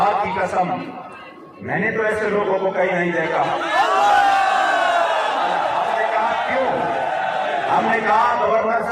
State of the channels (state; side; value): identical; both; correlation 1.00